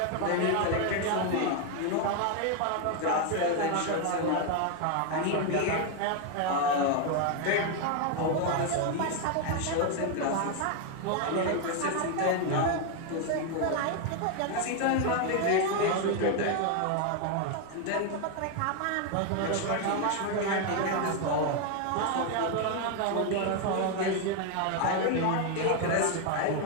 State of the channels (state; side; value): different; both; correlation 0.01